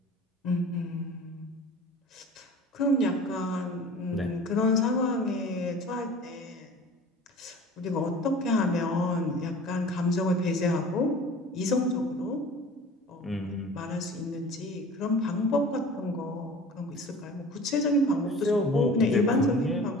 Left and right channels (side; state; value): both; normal; correlation 0.42